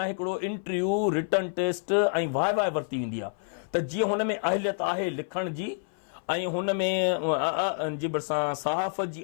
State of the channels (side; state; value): right; silent; 57 dB below the other